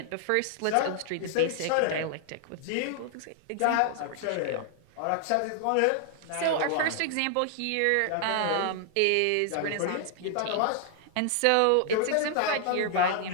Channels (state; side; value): different; both; correlation 0.00